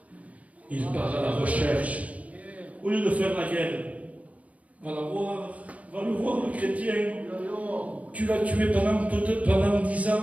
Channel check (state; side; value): late; left; 0.068 ms